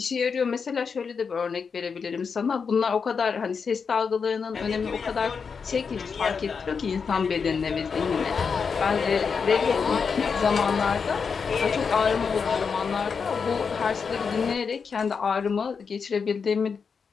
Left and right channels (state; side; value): quieter; right; 5.7 dB